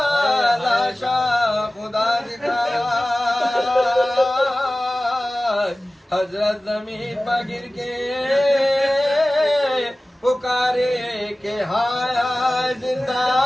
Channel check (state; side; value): normal; both; correlation 0.97